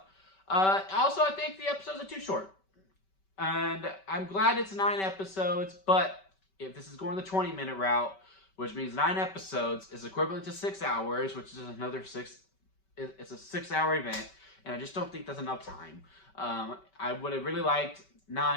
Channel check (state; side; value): late; right; 5.2 ms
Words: Also, I think the episodes are too short. And I'm glad it's 9 episodes, but if this is going the 20-minute route, which means 9 episodes is equivalent to 6 hours, which is another 6. It's a 6-hour event, and I just don't think that's enough time. I would have really liked